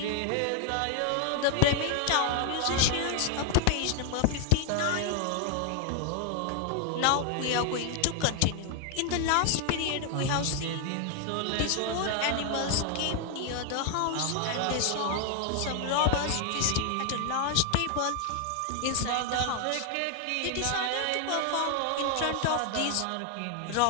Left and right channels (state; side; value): different; both; correlation 0.00